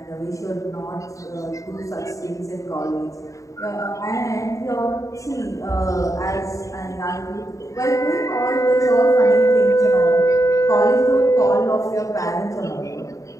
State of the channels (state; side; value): late; right; 0.16 ms